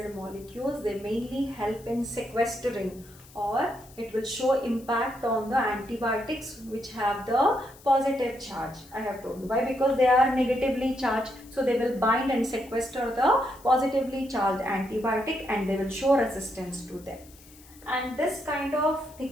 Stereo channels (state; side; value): noise; left; hiss, 23 dB below the sound